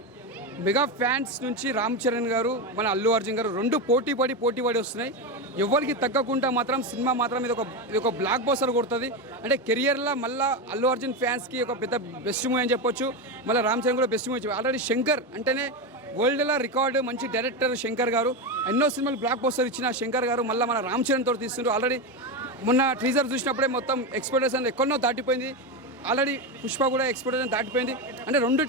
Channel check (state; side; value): normal; both; correlation 0.14